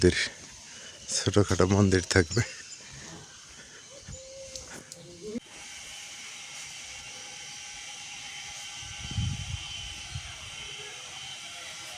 ছোটোখাটো মন্দির থাকবে।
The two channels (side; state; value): both; identical; correlation 1.00